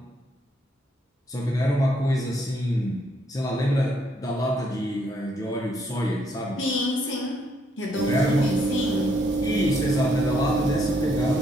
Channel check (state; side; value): normal; both; correlation 0.72